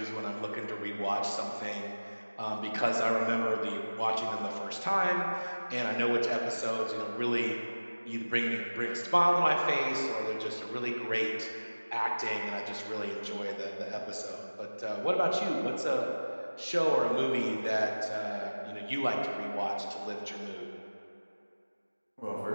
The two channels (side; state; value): both; inverted; correlation -1.00